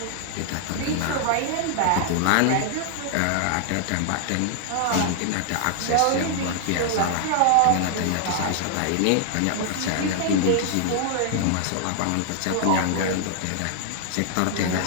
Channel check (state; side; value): different; both; correlation 0.00